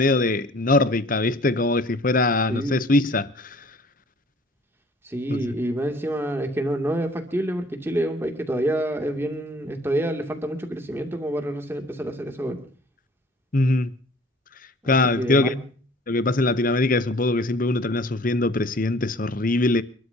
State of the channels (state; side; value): normal; both; correlation 0.52